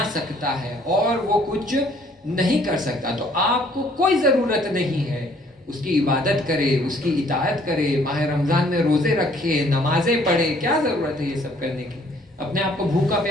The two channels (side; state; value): both; normal; correlation 0.61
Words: سکتا ہے اور وہ کچھ نہیں کر سکتا. تو آپ کو کوئی ضرورت نہیں ہے اس کی عبادت کرے، اس کی اطاعت کرے، ماہ رمضان میں روزے رکھے، نمازیں پڑھے. کیا ضرورت ہے یہ سب کرنے کی؟ اپنے آپ کو بھوکا